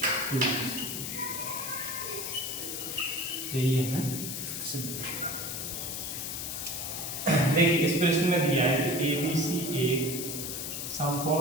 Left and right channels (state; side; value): noise; left; hiss, 5 dB below the sound